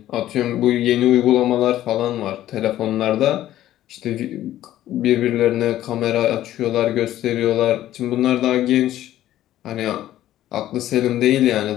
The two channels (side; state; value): right; quieter; 13.4 dB